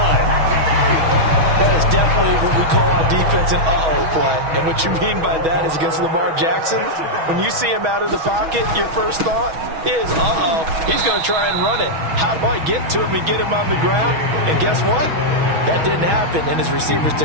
That is definitely what we call on defense an uh-oh play. And what you mean by that is against Lamar Jackson, when you see him out of the pocket, your first thought is, uh-oh, he's going to try and run it. How do I get to him and get him on the ground? And guess what? That didn't happen, and his receivers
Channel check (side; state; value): left; late; 6.2 ms